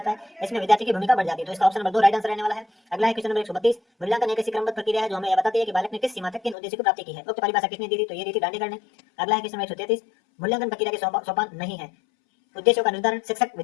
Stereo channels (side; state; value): right; drops out; at 6.6 s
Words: है, इसमें विद्यार्थी की भूमिका बढ़ जाती है। तो इसका ऑप्शन नंबर 2 राइट आंसर रहने वाला है। अगला है क्वेश्चन नंबर 132, मूल्यांकन एक ऐसी क्रमबद्ध प्रक्रिया है जो हमें यह बताती है कि बालक ने किस सीमा तक किन उद्देश्य को प्राप्ति की है। उक्त परिभाषा किसने दी थी? तो ये दी थी दांडेकर ने। अगला है क्वेश्चन नंबर 133, मूल्यांकन प्रक्रिया के सोपान नहीं है, उद्देश्यों का निर्धारण, शिक्षक